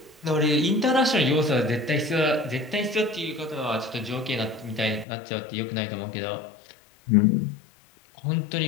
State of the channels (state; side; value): drops out; right; at 5.1 s